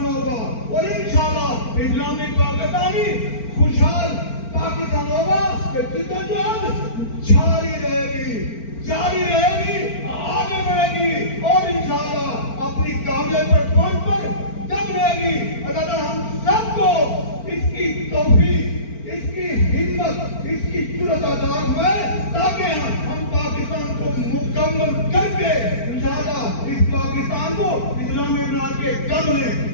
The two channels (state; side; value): late; right; 4.4 ms